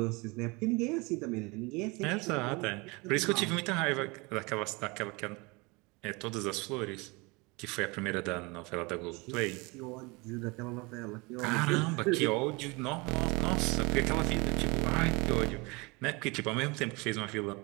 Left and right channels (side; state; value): left; quieter; 26.7 dB